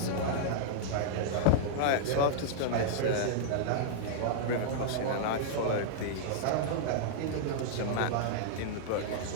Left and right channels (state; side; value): different; both; correlation -0.02